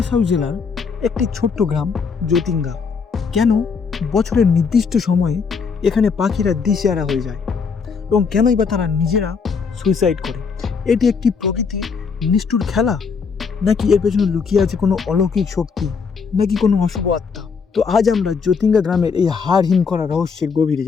জেলার একটি ছোট্ট গ্রাম জ্যোতিঙ্গা। কেন বছরের নির্দিষ্ট সময়ে এখানে পাখিরা দিশেহারা হয়ে যায় এবং কেনই বা তারা নিজেরা সুইসাইড করে? এটি একটি প্রকৃতির নিষ্ঠুর খেলা, নাকি এর পেছনে লুকিয়ে আছে কোনো অলৌকিক শক্তি, নাকি কোনো অশুভ আত্মা? তো আজ আমরা জ্যোতিঙ্গা গ্রামের এই হাড় হিম করা রহস্যের গভীরে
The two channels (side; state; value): right; quieter; 5.5 dB